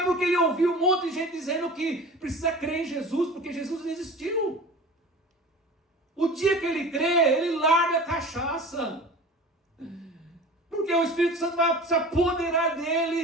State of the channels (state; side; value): normal; both; correlation 0.38